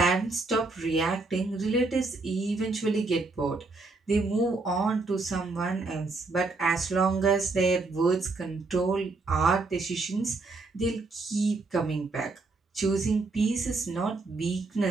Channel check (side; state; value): left; quieter; 3.6 dB